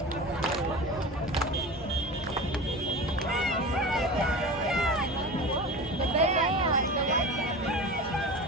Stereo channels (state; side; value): normal; both; correlation 0.32